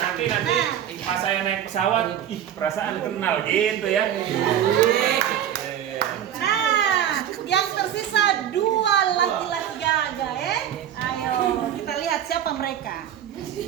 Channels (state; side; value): quieter; left; 10.2 dB